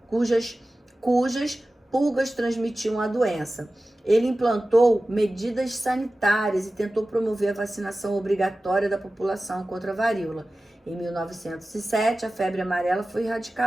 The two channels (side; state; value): both; normal; correlation 0.96